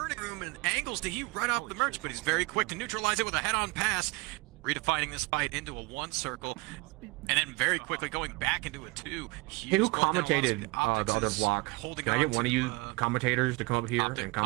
room and angles to Hugh right off the merge, but he's very quick to neutralize it with a head-on pass, redefining this fight into a 1 circle, and then very quickly going back into a 2. Hey, who commentated the other block? Can I get one of you commentators to come up here and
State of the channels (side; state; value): left; quieter; 24.8 dB